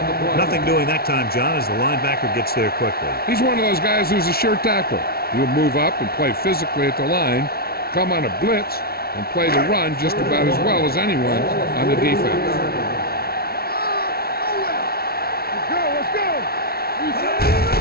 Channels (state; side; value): late; right; 0.44 ms